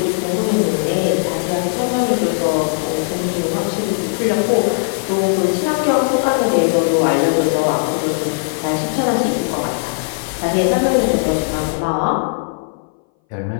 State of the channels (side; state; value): right; silent; 61 dB below the other